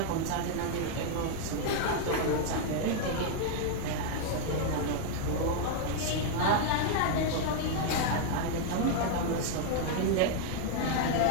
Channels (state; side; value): different; both; correlation 0.00